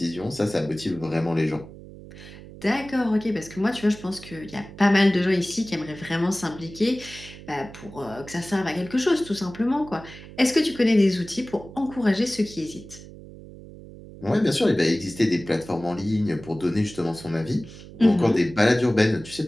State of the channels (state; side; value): noise; right; hum, 16 dB below the sound